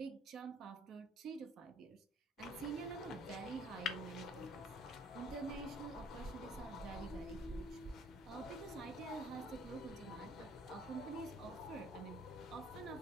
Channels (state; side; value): normal; both; correlation 0.57